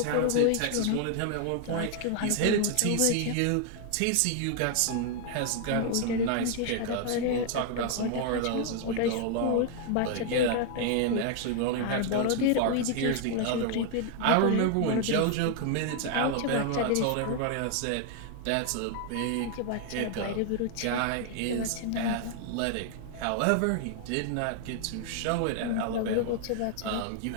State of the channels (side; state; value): both; different; correlation 0.00